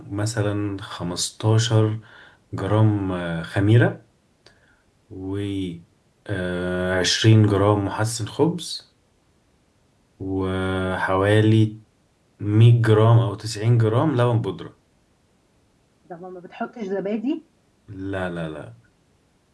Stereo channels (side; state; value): both; identical; correlation 1.00